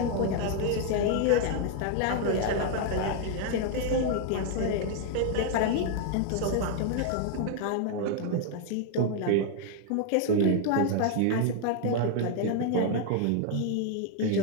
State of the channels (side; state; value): both; different; correlation 0.00